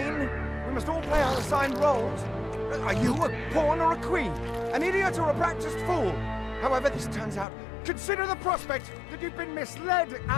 We must all play our assigned roles. Are you a pawn or a queen? An idiot or a practiced fool? However this turns out, consider the prospect that you've been misled,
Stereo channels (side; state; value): right; drops out; at 7.5 s